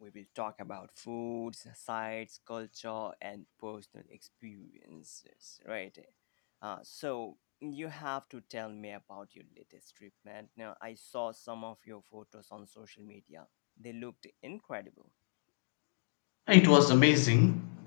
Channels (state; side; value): silent; right; digital silence